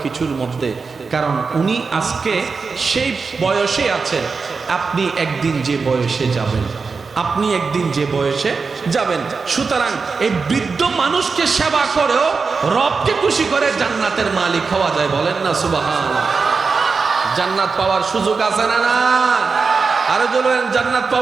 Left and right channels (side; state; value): left; quieter; 4.8 dB